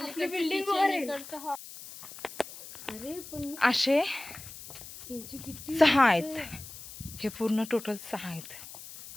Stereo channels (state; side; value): noise; left; hiss, 14 dB below the sound